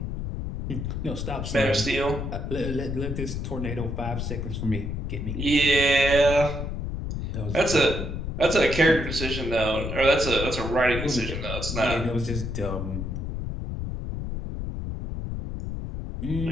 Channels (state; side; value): noise; left; rumble, 4 dB below the sound